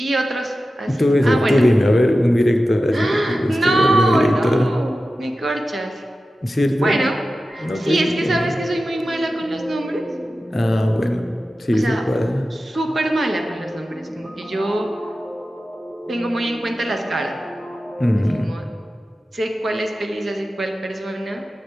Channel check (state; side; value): normal; both; correlation 0.94